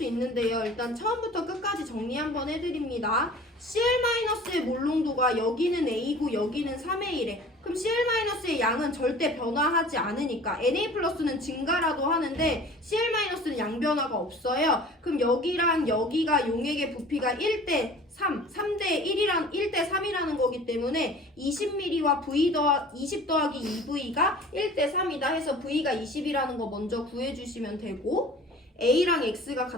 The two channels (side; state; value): both; normal; correlation 0.45